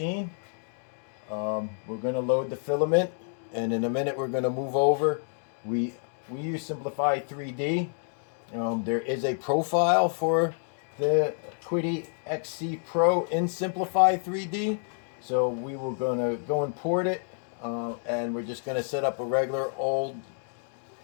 We're going to load the filament, and in a minute we're going to move over. We use Simplify 3D. There is a profile for the Quidi XC Pro in Simplify 3D, so we were going to go import it, and we're just going to set up a regular old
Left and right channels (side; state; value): right; silent; 59 dB below the other